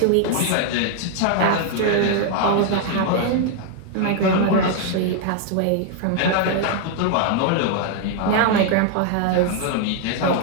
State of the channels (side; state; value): both; different; correlation 0.00